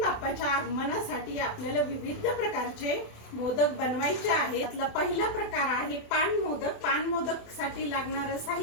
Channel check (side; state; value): right; late; 27 ms